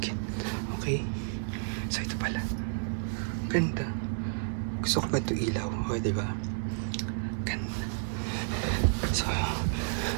Okay. So, ito pala. Ganda. Gusto ko ba ito ilaw? O, di ba? Ganda. So,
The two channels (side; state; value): left; silent; digital silence